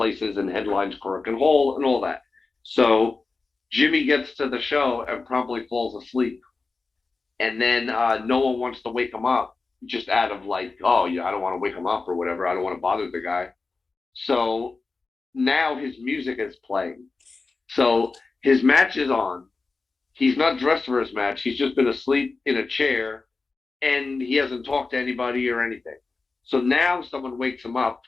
and headlines Cork and Hall and all that. So Jimmy gets to the show and promptly falls asleep, and then no one wants to wake him up just out of like, oh yeah, I don't want to wake him up or whatever. I don't want to bother the guy. So now his music is playing. So his match is on. He's not dressed for his match. He's just been asleep in a chair and he hasn't talked to anybody or anything. So now someone wakes him up.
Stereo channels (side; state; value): right; quieter; 4.0 dB